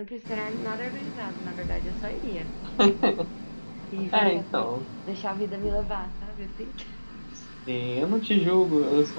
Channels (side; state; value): both; inverted; correlation -1.00